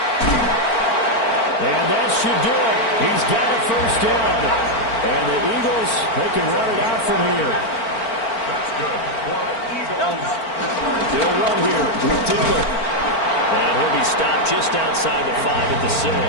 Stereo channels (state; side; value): late; right; 4.4 ms